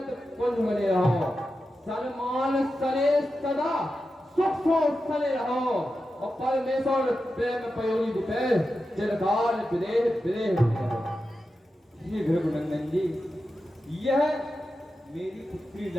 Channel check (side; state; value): both; normal; correlation 0.91